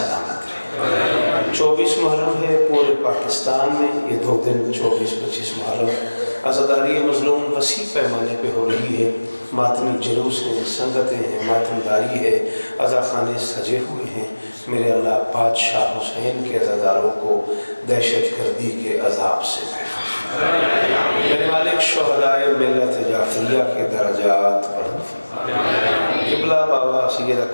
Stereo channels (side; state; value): both; inverted; correlation -1.00